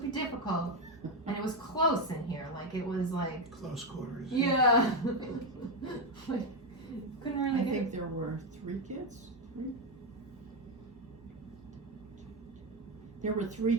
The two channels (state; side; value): normal; both; correlation 0.08